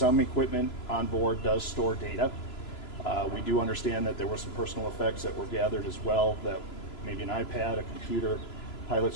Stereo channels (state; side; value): late; right; 3.0 ms